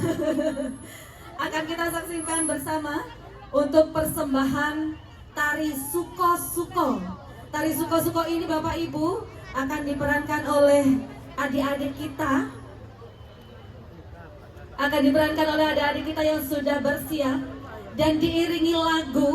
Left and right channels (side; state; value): both; identical; correlation 1.00